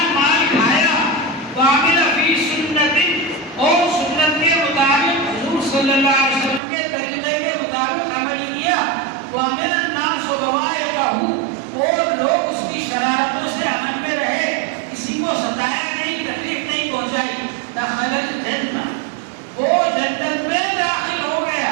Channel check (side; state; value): left; drops out; at 6.6 s